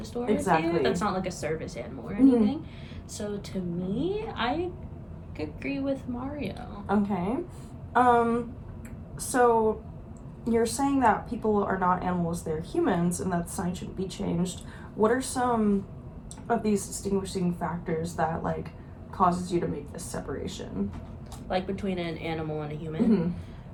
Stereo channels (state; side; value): identical; both; correlation 1.00